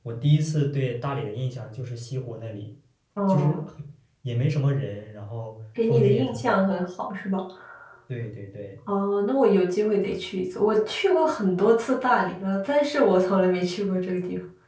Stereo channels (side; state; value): both; identical; correlation 1.00